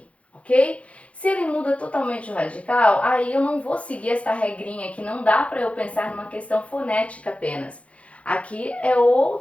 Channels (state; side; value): late; right; 0.063 ms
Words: ok? Se ele muda totalmente o radical, aí eu não vou seguir essa regrinha que não dá para eu pensar numa questão fonética apenas. Aqui é